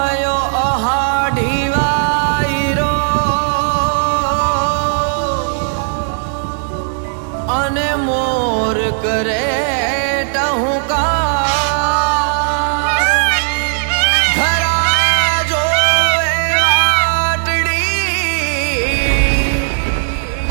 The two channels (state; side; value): silent; left; digital silence